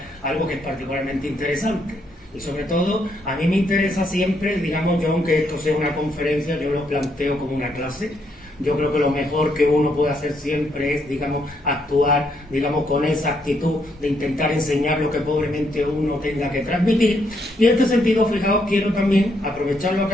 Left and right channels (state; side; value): normal; both; correlation 0.75